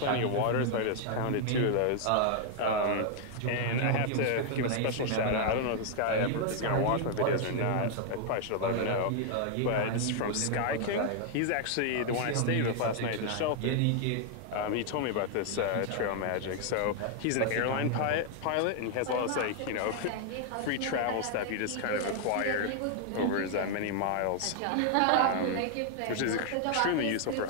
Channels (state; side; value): different; both; correlation 0.00